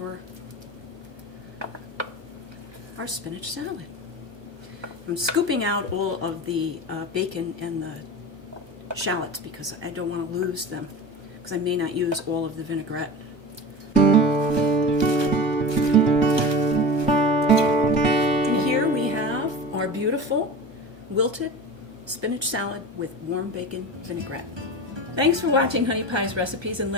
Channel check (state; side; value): late; left; 1.2 ms